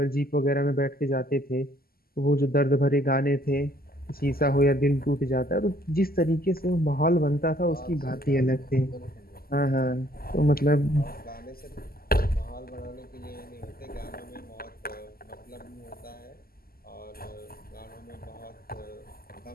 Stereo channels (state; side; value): late; right; 0.43 ms